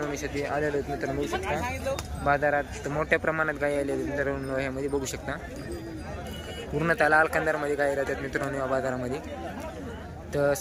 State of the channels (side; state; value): both; identical; correlation 1.00